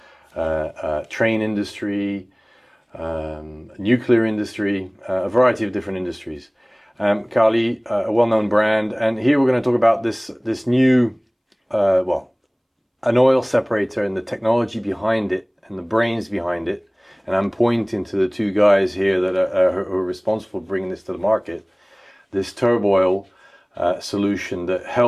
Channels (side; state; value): both; identical; correlation 1.00